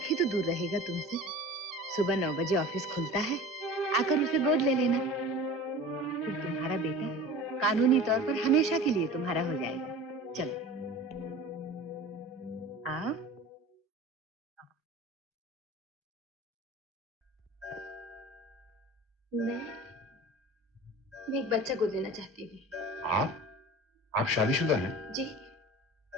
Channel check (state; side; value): normal; both; correlation 0.38